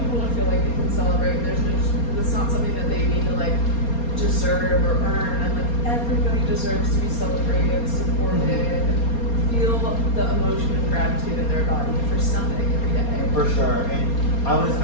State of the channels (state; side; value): late; right; 4.3 ms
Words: to feel like they can celebrate. It's not something that they need to like deserve or earn. And like everybody deserves to be celebrated, supported, feel the emotion of gratitude in their body for something every day. For sure. And I was